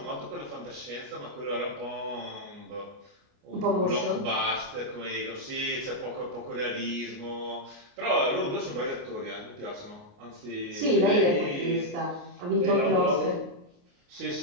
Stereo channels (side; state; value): left; late; 29 ms